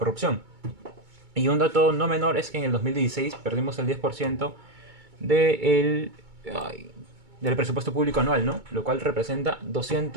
Y un dato no menor es que en el 2016 perdimos el 10% del, ay, del presupuesto público anual, ¿no? Lo cual representa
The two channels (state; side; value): late; left; 2.2 ms